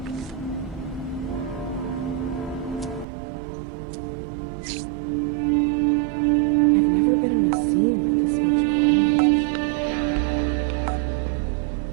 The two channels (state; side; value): drops out; left; at 3.1 s